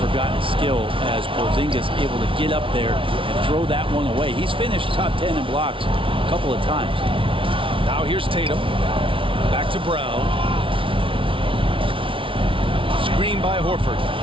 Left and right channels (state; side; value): late; left; 0.25 ms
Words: forgotten skill as Porzingis able to get up there and throw that one away. He's finished top 10 in blocks a couple of times. Now here's Tatum. Back to Brown. Screen by Horford.